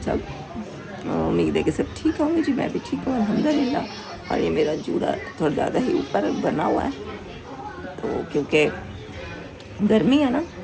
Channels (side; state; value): both; identical; correlation 1.00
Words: सब? उम्मीद है कि सब ठीक होंगे जी। मैं भी ठीक हूँ अल्हम्दुलिल्लाह। और ये मेरा जूड़ा थोड़ा ज़्यादा ही ऊपर बना हुआ है, तो क्योंकि गर्मी है ना,